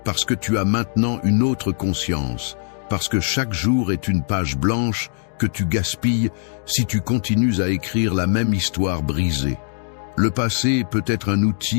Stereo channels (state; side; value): silent; right; digital silence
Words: parce que tu as maintenant une autre conscience, parce que chaque jour est une page blanche que tu gaspilles si tu continues à écrire la même histoire brisée. Le passé peut être un